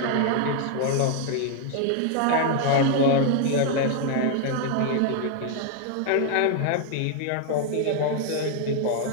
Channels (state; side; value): different; both; correlation 0.00